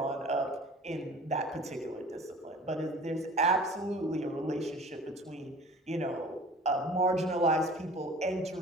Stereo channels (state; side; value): normal; both; correlation 0.44